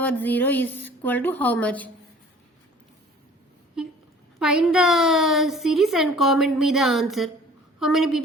0 is equal to how much? Find the series and comment me the answer. How many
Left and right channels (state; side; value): normal; both; correlation 0.49